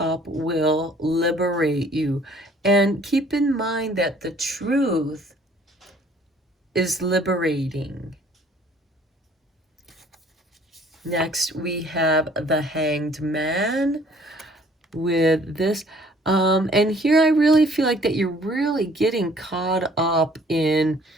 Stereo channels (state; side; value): normal; both; correlation 0.57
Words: will liberate you. And keep in mind that the truth is liberating. Next, we have the Hanged Man with this. And here I really feel like that you're really getting caught up in